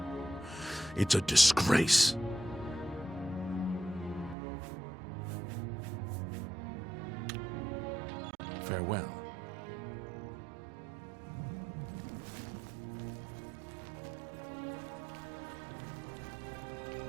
It's a disgrace. Farewell.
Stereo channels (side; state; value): left; drops out; at 4.4 s